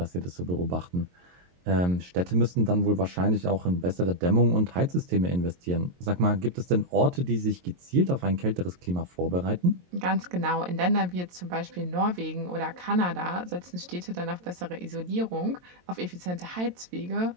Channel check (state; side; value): late; left; 22 ms